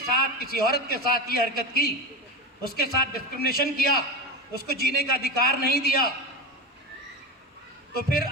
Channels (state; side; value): normal; both; correlation 0.21